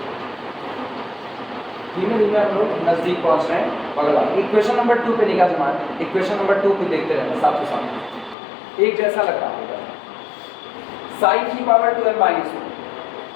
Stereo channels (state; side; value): drops out; right; at 8.3 s